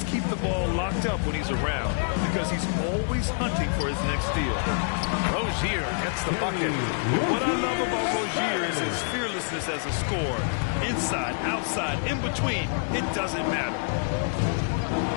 keep the ball locked up when he's around, because he's always hunting for his next steal. Rozier gets the bucket. What I love about Rozier is his fearlessness as a scorer. Inside, outside, in between, it doesn't matter.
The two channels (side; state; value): right; silent; digital silence